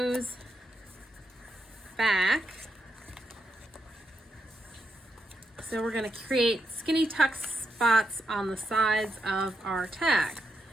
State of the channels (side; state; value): both; normal; correlation 0.83